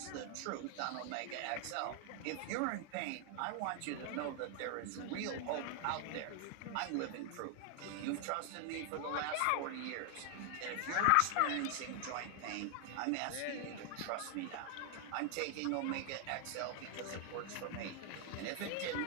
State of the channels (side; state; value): both; different; correlation 0.00